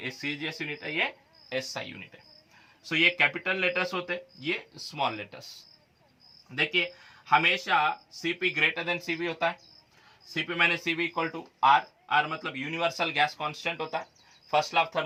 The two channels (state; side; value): identical; both; correlation 1.00